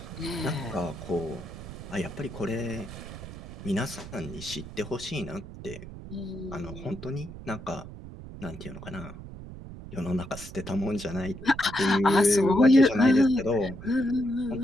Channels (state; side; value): noise; right; rumble, 13 dB below the sound